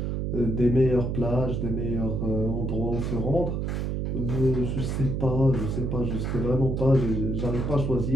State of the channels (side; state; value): right; noise; hum, 1 dB below the sound